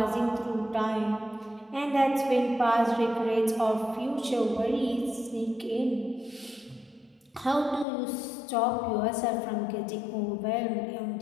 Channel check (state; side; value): drops out; right; at 7.9 s